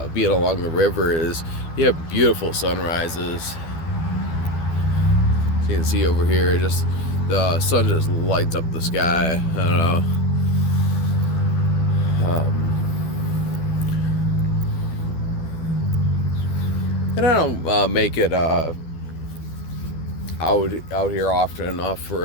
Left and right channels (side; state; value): right; late; 12 ms